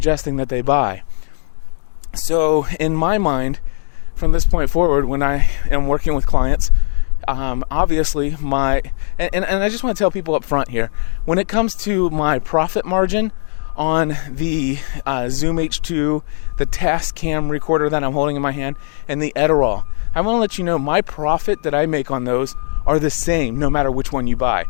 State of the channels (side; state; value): right; silent; digital silence